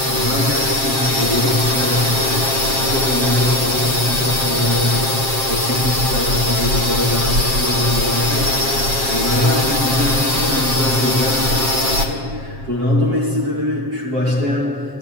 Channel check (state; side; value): late; left; 7.5 ms